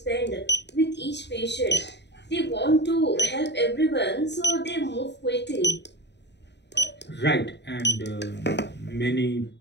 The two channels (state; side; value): late; right; 0.50 ms